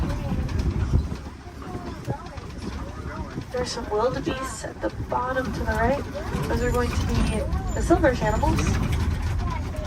There's some wildebeests at the bottom to the right. Those are going to be the silverish animals.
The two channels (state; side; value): identical; both; correlation 1.00